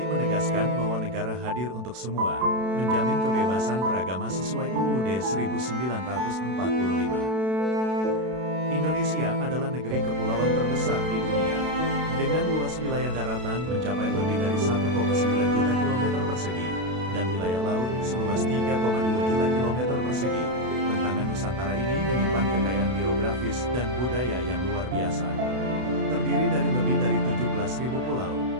menegaskan bahwa negara hadir untuk semua, menjamin kebebasan beragama sesuai UUD 1945. Indonesia adalah negeri kepulauan terbesar di dunia, dengan luas wilayah daratan mencapai lebih dari 1,9 juta kilometer persegi, dan wilayah laut seluas 3,2 juta kilometer persegi. Bentangan Nusantara ini menyimpan kekayaan geografis dan budaya yang luar biasa. Terdiri dari lebih dari 17.000 pulau,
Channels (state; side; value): late; left; 32 ms